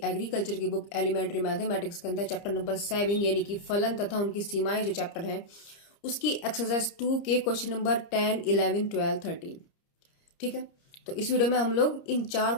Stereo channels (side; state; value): right; late; 30 ms